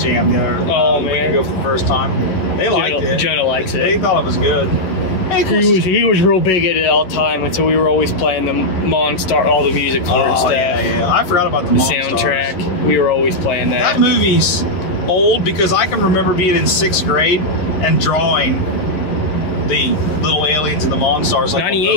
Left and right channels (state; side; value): late; right; 11 ms